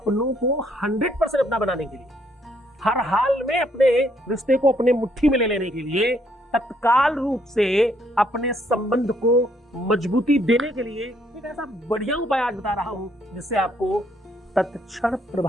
को 100% अपना बनाने के लिए, हर हाल में अपने रिश्ते को अपने मुट्ठी में ले लेने के लिए, तत्काल रूप से अपने संबंध को मजबूती देने के लिए एक ऐसा बढ़िया उपाय आज बता रहा हूं जिससे आपको तत्क्षण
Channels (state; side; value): normal; both; correlation 0.70